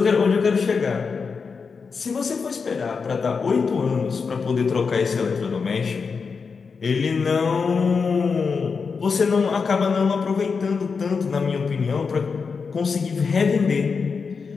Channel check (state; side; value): quieter; right; 5.3 dB